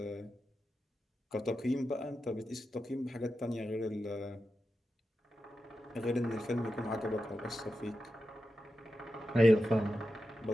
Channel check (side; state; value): both; normal; correlation 0.90